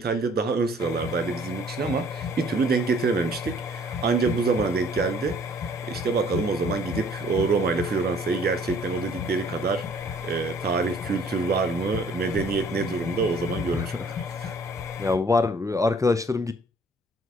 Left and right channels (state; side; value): normal; both; correlation 0.57